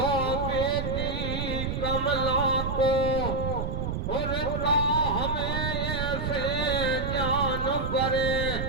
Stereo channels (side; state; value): right; noise; rumble, 3 dB below the sound